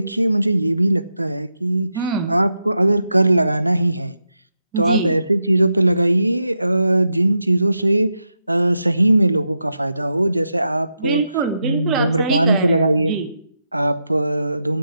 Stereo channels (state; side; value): inverted; both; correlation -0.86